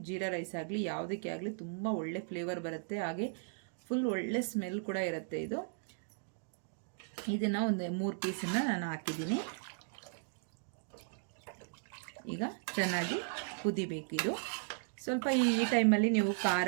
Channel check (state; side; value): silent; left; digital silence